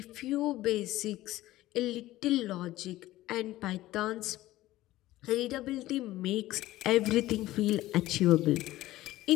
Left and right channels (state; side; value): quieter; right; 16.3 dB